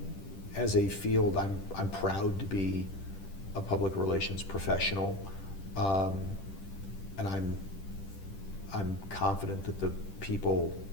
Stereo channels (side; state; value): right; late; 10 ms